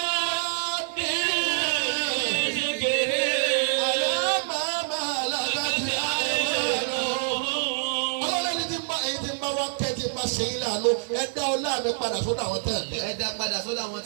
zikiri. alámàmà làbàtì àìmọ́nù. ọlọ́ọ̀lẹ́ni tí ń bá èyí tí ń bá wọn kẹ́ tí ń bá ṣe yín láàánú ẹ dá ọlá mi padà sódà wọn tẹ̀ mí. ẹ dá padà sọ́dọ̀ àwọn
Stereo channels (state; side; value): silent; left; digital silence